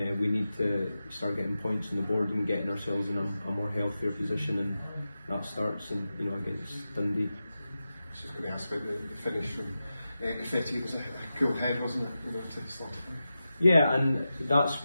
need to start getting points on the board and getting ourselves in a more healthier position, and that starts against Dundee. I was just going to ask about the finish from 50. It was a cool head, wasn't it? To slot it. Yeah, and that's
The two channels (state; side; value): inverted; both; correlation -0.92